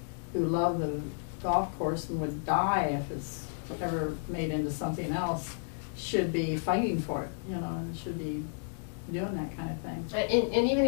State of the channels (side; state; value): right; silent; digital silence